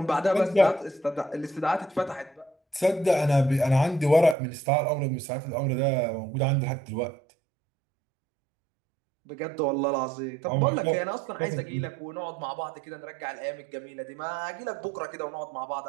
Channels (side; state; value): left; drops out; at 4.4 s